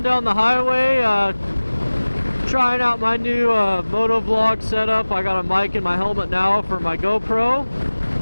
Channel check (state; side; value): inverted; both; correlation -1.00